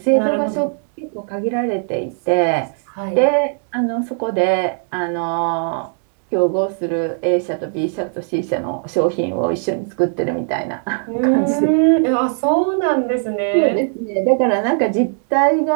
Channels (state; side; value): silent; left; 64 dB below the other